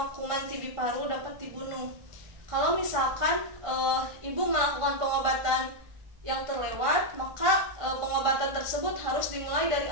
kuman TB paru dapat dibunuh. Kalau misalkan ibu melakukan pengobatan yang terlewat, maka pengobatan tersebut harus dimulai dari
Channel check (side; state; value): left; late; 1.6 ms